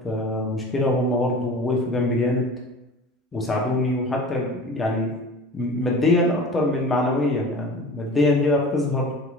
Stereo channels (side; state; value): both; normal; correlation 0.38